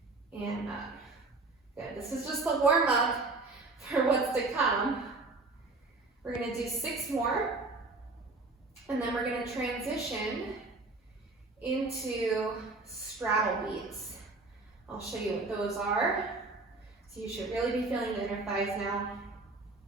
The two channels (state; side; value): quieter; left; 3.4 dB